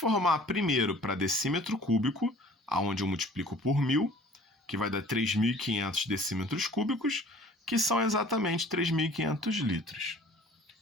primeiro para decímetro cúbico, onde eu multiplico por 1.000, que vai dar 3.500 decímetros cúbicos, que são exatamente 3.500 litros.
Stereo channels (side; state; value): both; normal; correlation 0.50